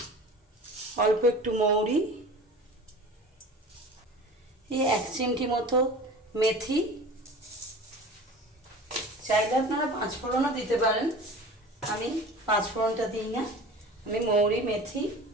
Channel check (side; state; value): both; normal; correlation 0.38